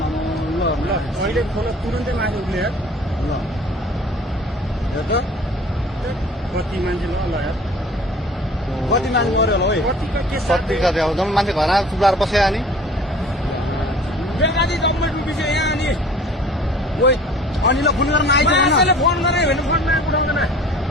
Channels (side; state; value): both; normal; correlation 0.47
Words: अहिले खोला तुरन्तै माथि उठ्ने यार ल हेर त कति मान्छे ल यार कति मान्छे मऱ्यो होला है कतिको के कति कति अब जम्मै मान्छे घरमा चुप्लाएर बस्यो अनि बेकारी गभर्मेन्ट अफिस यहाँ अनि ओइ अनिललाई फोन गर्न आइज मान्छेले फोन गरे भने फोनमा उठाउँदैन